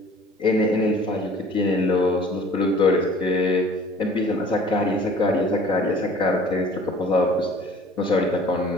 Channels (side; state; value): both; normal; correlation 0.50